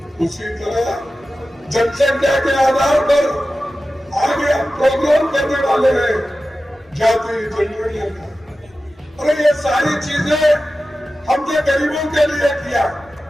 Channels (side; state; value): both; normal; correlation 0.94